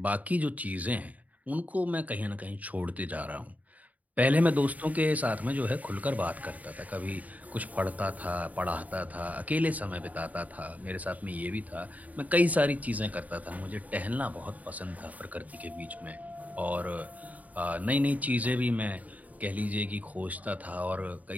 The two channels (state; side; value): late; left; 0.073 ms